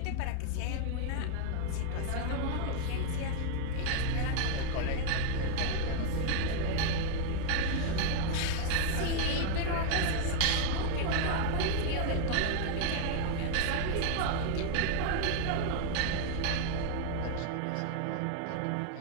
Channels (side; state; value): both; different; correlation 0.00